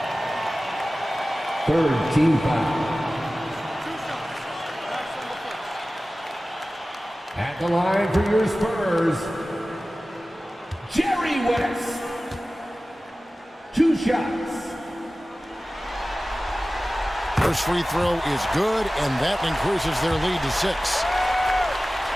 Third team foul. At the line for your Spurs, Jerry West. 2 shots. First free throw is good, and that increases their lead to 6.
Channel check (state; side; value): normal; both; correlation 0.97